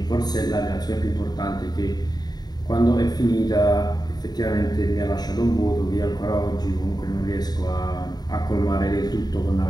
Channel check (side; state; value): right; late; 0.20 ms